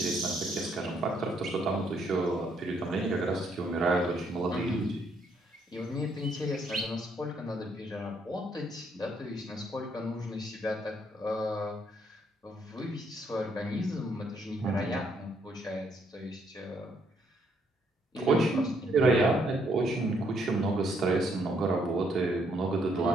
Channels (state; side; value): normal; both; correlation 0.71